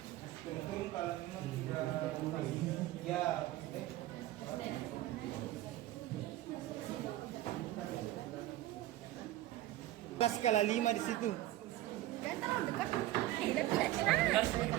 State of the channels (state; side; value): quieter; left; 15.1 dB